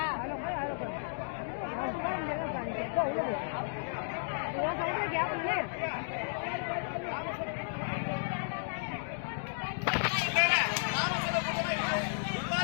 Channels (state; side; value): silent; right; digital silence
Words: நான் சொல்றது கேப்பல